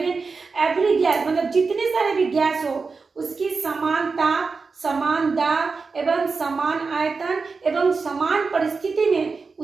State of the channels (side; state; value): left; quieter; 4.6 dB